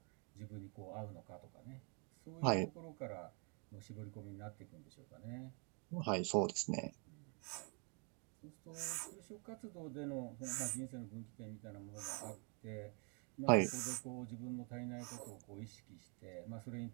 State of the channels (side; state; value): left; quieter; 36.1 dB